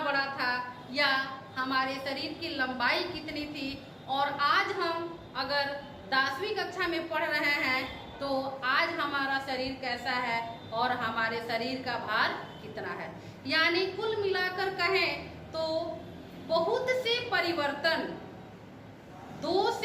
बड़ा था या हमारे शरीर की लंबाई कितनी थी, और आज हम अगर 10वीं कक्षा में पढ़ रहे हैं तो आज हमारा शरीर कैसा है और हमारे शरीर का भार कितना है। यानी कुल मिलाकर कहें तो बहुत से परिवर्तन 2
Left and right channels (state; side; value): identical; both; correlation 1.00